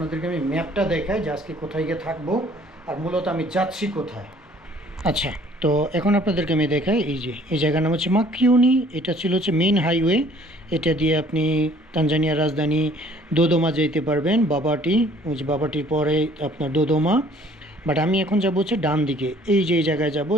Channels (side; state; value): both; normal; correlation 0.56